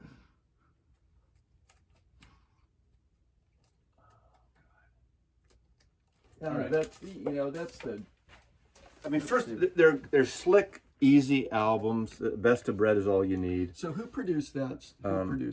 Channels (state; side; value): identical; both; correlation 1.00